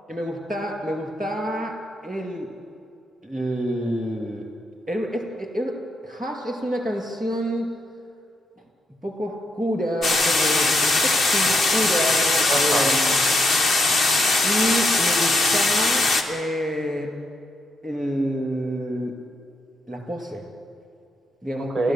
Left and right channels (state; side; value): normal; both; correlation 0.79